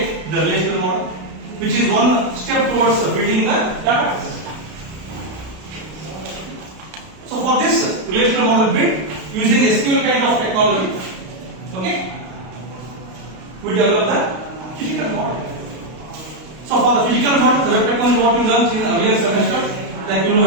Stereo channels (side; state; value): left; late; 32 ms